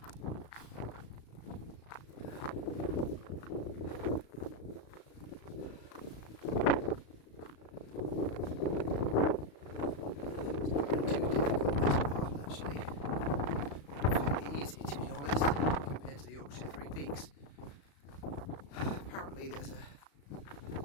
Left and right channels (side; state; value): right; late; 35 ms